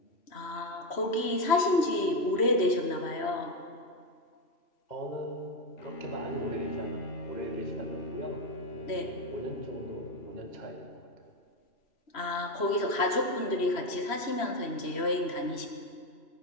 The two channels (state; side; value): late; right; 3.0 ms